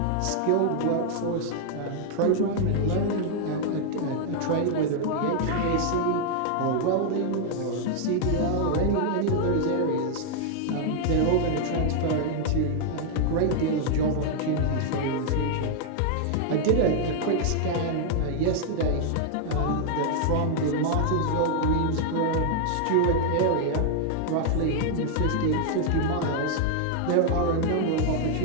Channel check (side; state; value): both; different; correlation 0.00